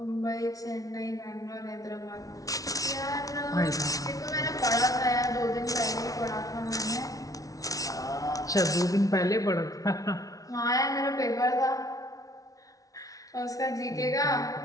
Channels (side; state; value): right; late; 0.18 ms